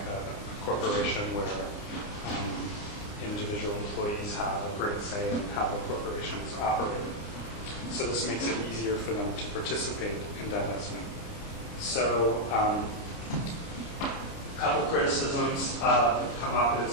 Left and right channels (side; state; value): right; late; 29 ms